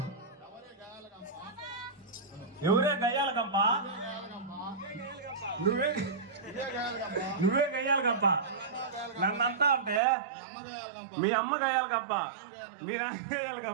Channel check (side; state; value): left; drops out; at 10.0 s